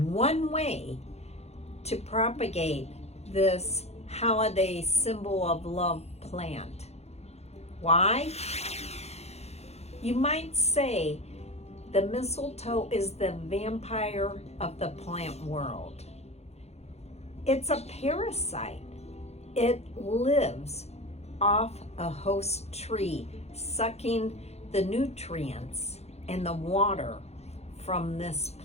way to propagate this holiday symbol of love plant. Why? You might say the mistletoe is the vampire of the plant world. It's a parasite. It lives off a host tree, sucking the nutrients and the water from this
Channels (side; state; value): right; late; 0.31 ms